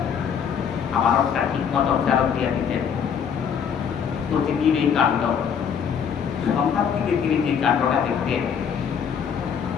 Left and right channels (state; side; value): quieter; right; 7.4 dB